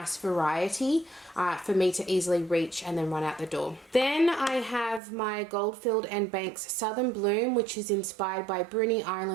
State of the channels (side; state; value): left; drops out; at 5.0 s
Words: variety for me to easily reach and then run out the door. Then I have my Goldfield and Banks Southern Bloom, which is inspired by Bruny